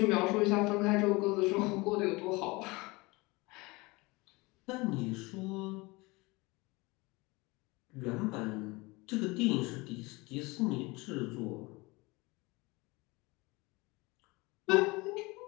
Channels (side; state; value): right; quieter; 24.0 dB